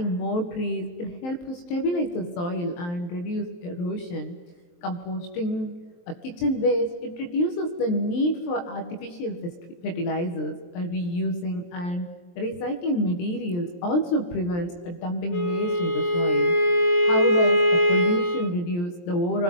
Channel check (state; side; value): late; right; 23 ms